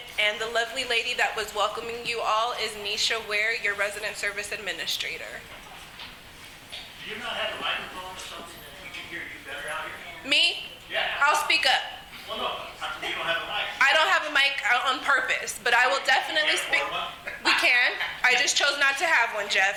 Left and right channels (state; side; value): identical; both; correlation 1.00